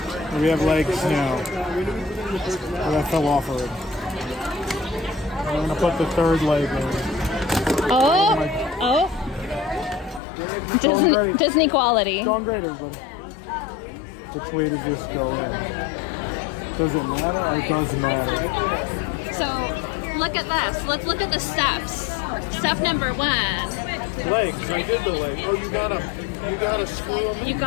We have legs now. Oh, that fell off already. I'm gonna put the third leg in. Oh, oh. Ready. Disney quality. Going great, everybody. Which way does this go in? Does it matter? It does matter. So look at this. Let's look at the steps. Step number 1. Legs, I did the leg. Oh, you gotta screw them in. You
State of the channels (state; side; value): drops out; right; at 10.2 s